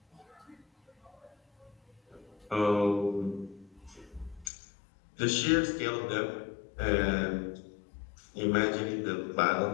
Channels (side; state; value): right; drops out; at 4.5 s